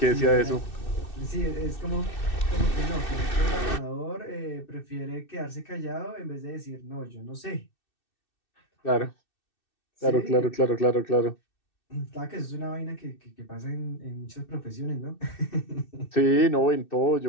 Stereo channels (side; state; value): right; late; 2.6 ms